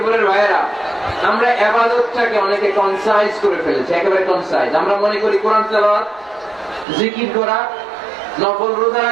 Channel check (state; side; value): drops out; left; at 6.9 s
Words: ভাইয়েরা, আমরা ইবাদতটাকে অনেকে কনসাইজ করে ফেলেছি, একেবারে কনসাইজ। আমরা মনে করি কোরআন তেলাওয়াত, জিকির করা, নফল রোজা